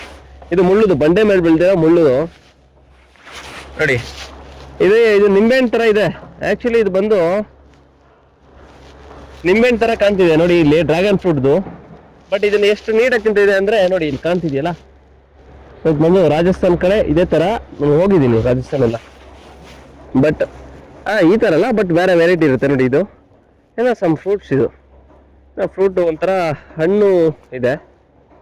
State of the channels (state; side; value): identical; both; correlation 1.00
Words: ಇದು ಮುಳ್ಳುದು, ಬಂಡೆ ಮೇಲೆ ಬೆಳೆದಿರೋ ಮುಳ್ಳು ನೋಡಿ. ಇದು ನಿಂಬೆಹಣ್ಣು ತರ ಇದೆ. ಆಕ್ಚುಲಿ ಇದು ಬಂದು ನಿಂಬೆಹಣ್ಣು ತರ ಕಾಣ್ತಿದೆ ನೋಡಿ, ಇಲ್ಲಿ ಡ್ರ್ಯಾಗನ್ ಫ್ರೂಟ್ದು. ಬಟ್ ಇದನ್ನ ಎಷ್ಟು ನೀಟಾಗಿ ತಿಂತಿದೆ ಅಂದ್ರೆ ನೋಡಿ, ಇಲ್ಲಿ ಕಾಣ್ತಿದ್ಯಲ್ಲ. ಇದು ಬಂದು ರಾಜಸ್ಥಾನ್ ಕಡೆ ಇದೇ ತರ ನಾನು ಹೋಗಿದ್ದೀನಿ, ರಾಜಸ್ಥಾನ್ ಎಲ್ಲ. ಬಟ್ ಈ ತರ ಅಲ್ಲ, ಬಟ್ ಬೇರೆ ವೆರೈಟಿ ಇರುತ್ತೆ ನೋಡಿ. ಇದು ಏನೋ ಸಮ್ ಫ್ರೂಟ್ಸ್. ಇದು ಫ್ರೂಟ್ ಒಂಥರ ಹಣ್ಣು ಇದೆ.